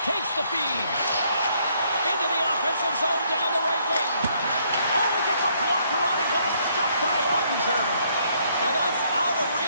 Takes the feed. Into the offensive zone down the right wing. Oh, he gets a blocker on it. What a stop by Ottinger. And that's out of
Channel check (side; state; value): both; inverted; correlation -0.68